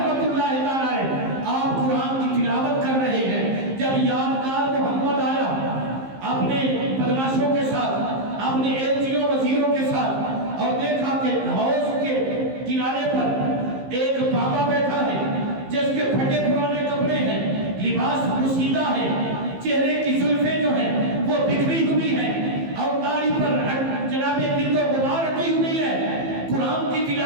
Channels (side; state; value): left; late; 15 ms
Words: اللہ تعالی، آپ قرآن کی تلاوت کر رہے ہیں، جب یادگار محمد آیا اپنے بدماشوں کے ساتھ، اپنے ایلچیوں وزیروں کے ساتھ، اور دیکھا کہ حوض کے کنارے پر ایک بابا بیٹھا ہے جس کے پھٹے پرانے کپڑے ہیں، لباس پوشیدہ ہے، چہرے کی زلفیں جو ہیں وہ بکھری ہوئی ہیں اور داڑھی پر جناب گرد و غبار رکھی ہوئی ہے، قرآن کی